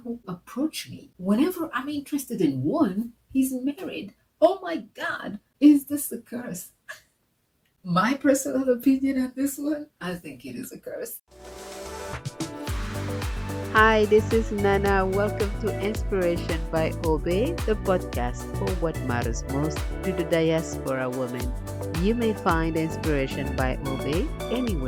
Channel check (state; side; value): identical; both; correlation 1.00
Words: approach me. Whenever I'm interested in one, he's married. Oh my God, is this a curse? My personal opinion on this one, I think it is a curse. Hi, this is Nana. Welcome to Inspiration by Obey, the podcast for what matters most to the diaspora woman. You may find Inspiration by Obey